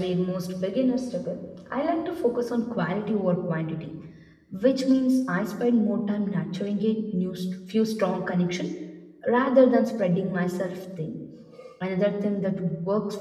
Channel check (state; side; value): identical; both; correlation 1.00